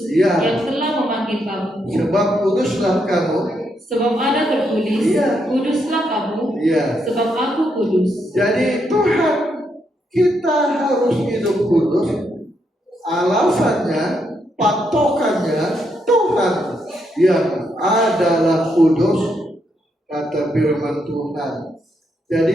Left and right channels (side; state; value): both; normal; correlation 0.78